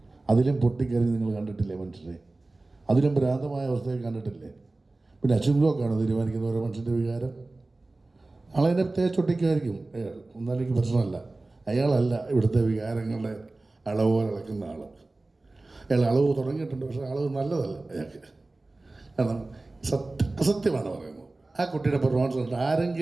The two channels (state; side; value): quieter; left; 3.1 dB